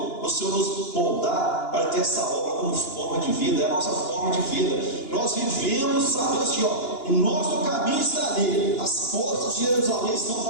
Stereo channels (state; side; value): late; right; 2.9 ms